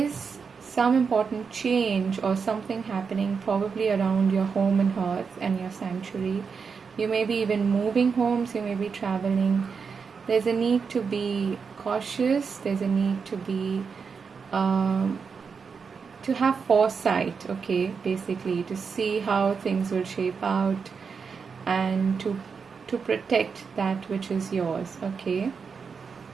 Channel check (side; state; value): left; quieter; 5.7 dB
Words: some important change or something happening probably around your home and hearth and your sanctuary. You may be even moving homes, you may be traveling. There's a need to be cautious, there's a need to be to have foresight, okay, basically to see how things will shape out, and to protect that which is yours. Okay,